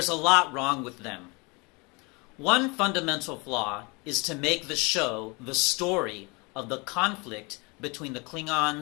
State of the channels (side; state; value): right; quieter; 28.6 dB